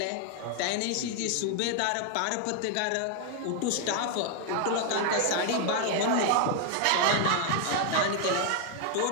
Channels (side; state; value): both; different; correlation 0.00